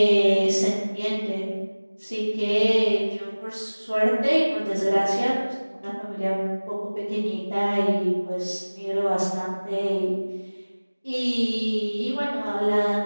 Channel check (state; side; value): inverted; both; correlation -1.00